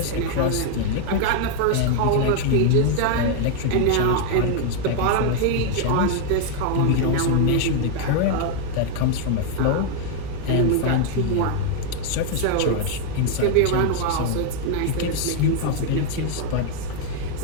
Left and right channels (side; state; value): both; different; correlation 0.00